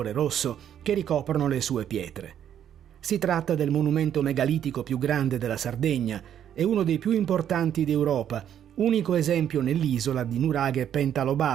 rosso che ricoprono le sue pietre. Si tratta del monumento megalitico più grande della Sardegna e uno dei più importanti d'Europa, unico esempio nell'isola di nuraghe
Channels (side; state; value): left; quieter; 9.8 dB